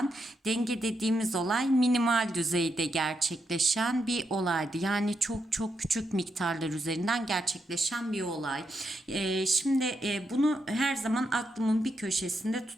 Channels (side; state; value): both; normal; correlation 0.82